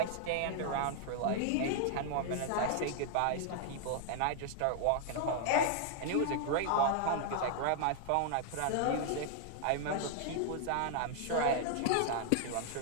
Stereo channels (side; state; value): both; different; correlation 0.00